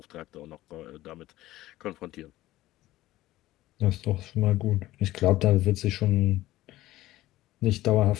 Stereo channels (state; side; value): quieter; right; 16.2 dB